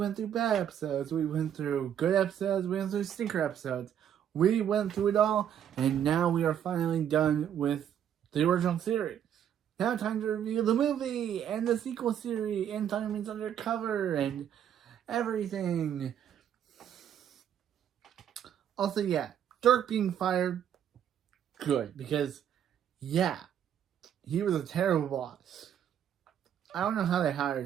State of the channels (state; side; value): quieter; left; 9.5 dB